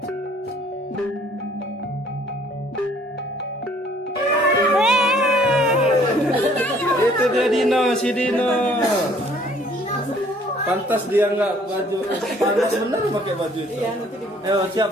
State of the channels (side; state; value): both; normal; correlation 0.59